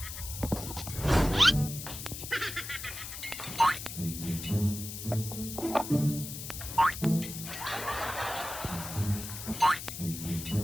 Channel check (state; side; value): noise; left; hiss, 8 dB below the sound